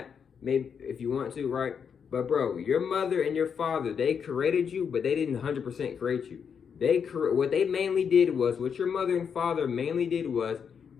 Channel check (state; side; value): quieter; right; 6.9 dB